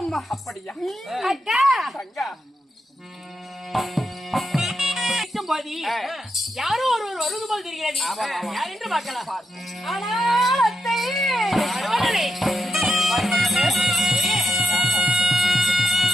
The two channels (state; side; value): normal; both; correlation 0.83